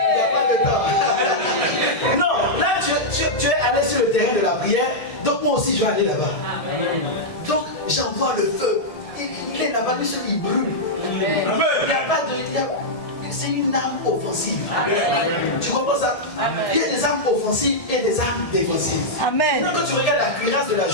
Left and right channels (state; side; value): late; right; 1.7 ms